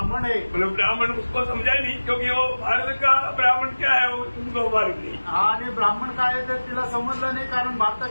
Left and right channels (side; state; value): both; inverted; correlation -1.00